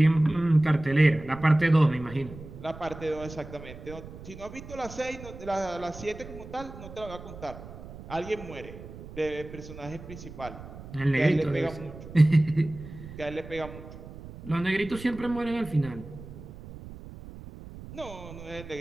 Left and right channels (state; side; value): noise; right; rumble, 14 dB below the sound